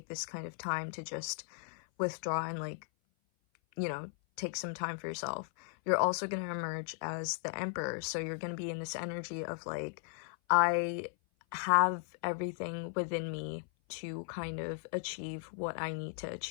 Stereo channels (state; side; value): silent; right; 54 dB below the other